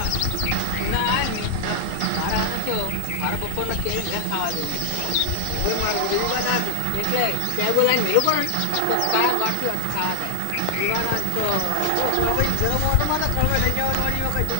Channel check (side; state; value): both; different; correlation 0.00